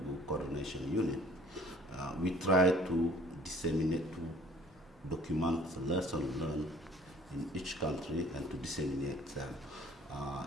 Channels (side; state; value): both; normal; correlation 0.53